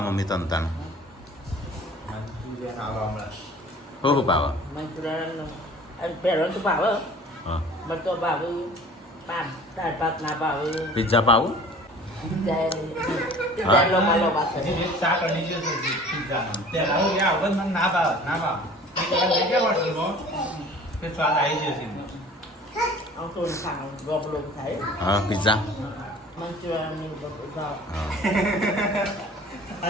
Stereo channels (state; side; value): normal; both; correlation 0.47